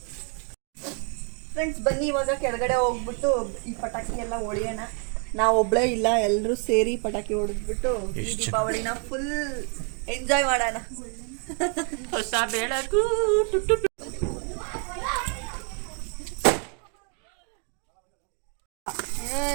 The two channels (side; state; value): left; quieter; 39.5 dB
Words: ಫ್ರೆಂಡ್ಸ್, ಬನ್ನಿ ಇವಾಗ ಕೆಳಗಡೆ ಹೋಗ್ಬಿಟ್ಟು ಈ ಪಟಾಕಿ ಎಲ್ಲ ಹೊಡಿಯೋಣ. ನಾವು ಒಬ್ಳೇ ಇಲ್ಲ, ಎಲ್ಲರೂ ಸೇರಿ ಪಟಾಕಿ ಹೊಡೆದ್ಬಿಟ್ಟು ಈ ದೀಪಾವಳಿನ ಫುಲ್ ಎಂಜಾಯ್ ಮಾಡೋಣ. ಹೊಸ ಬೆಳಕು.